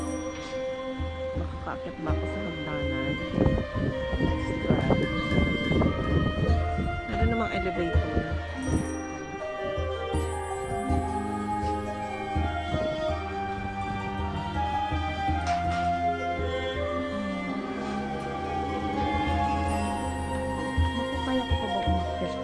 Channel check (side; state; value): both; identical; correlation 1.00